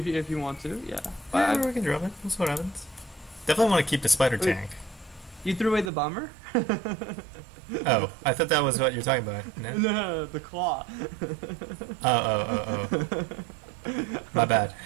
you want to, yeah. Yeah, we can drop it. That's what happens. Definitely want to keep the spider tank. You threw away the bomber? Oh, I thought that was what you're talking about. No, No, the claw. Oh. My bad.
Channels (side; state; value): left; drops out; at 5.9 s